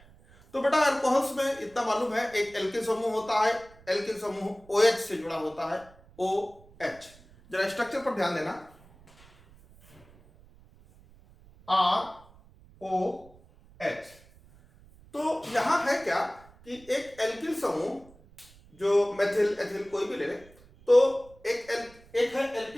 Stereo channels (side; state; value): right; noise; rumble, 25 dB below the sound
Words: तो बेटा एल्कोहल्स में इतना मालूम है, एक एल्किल समूह होता है। एल्किल समूह OH से जुड़ा होता है, OH। जरा स्ट्रक्चर पर ध्यान देना, ROH। तो यहां है क्या कि एक एल्किल समूह, जो मेथिल एथिल कोई भी ले ले, तो एक है